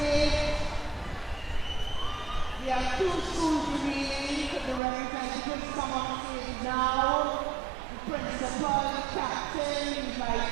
We have 2 schools remaining. The representatives come on stage now. The principal, the captain, the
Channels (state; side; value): drops out; left; at 4.8 s